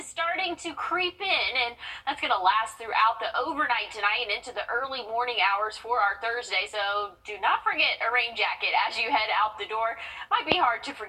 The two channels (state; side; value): identical; both; correlation 1.00